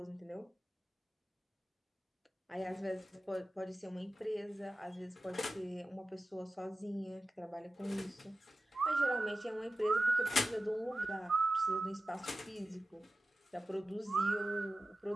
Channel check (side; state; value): both; normal; correlation 0.95